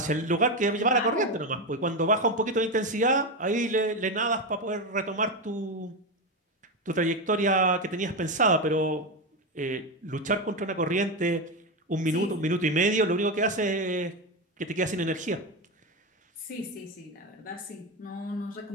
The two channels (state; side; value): normal; both; correlation 0.14